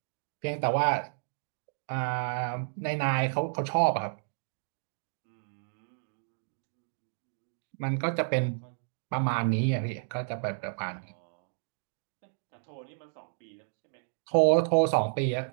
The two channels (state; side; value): silent; left; digital silence